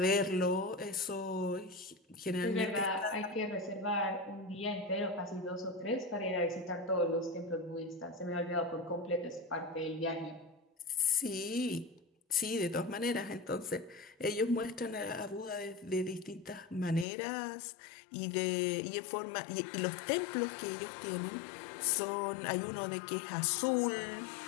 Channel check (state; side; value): drops out; right; at 17.1 s